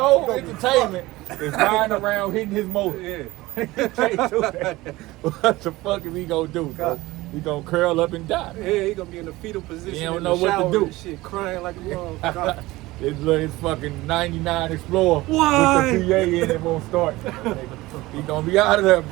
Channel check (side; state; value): left; quieter; 19.3 dB